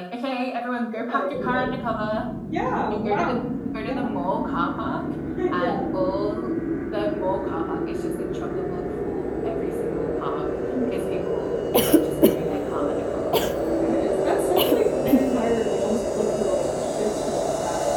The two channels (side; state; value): both; identical; correlation 1.00